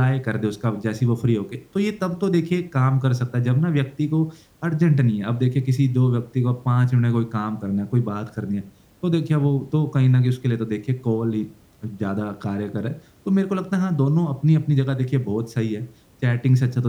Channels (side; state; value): both; identical; correlation 1.00